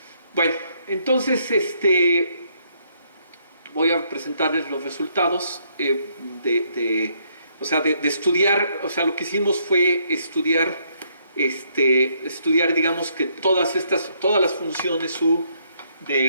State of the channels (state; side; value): inverted; both; correlation -0.71